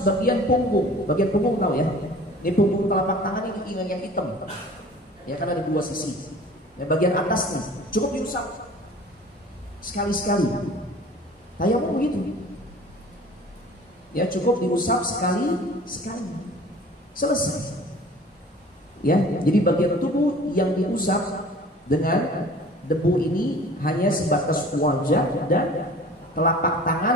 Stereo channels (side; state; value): both; normal; correlation 0.46